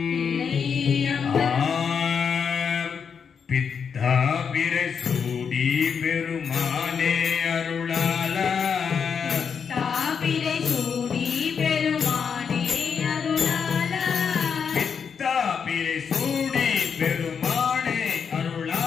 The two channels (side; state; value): right; quieter; 6.6 dB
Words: பித்தா பிறை சூடி பெருமானே அருளாலா, பிறை சூடி பெருமானே அருளாலா, பித்தா பிறை சூடி பெருமானே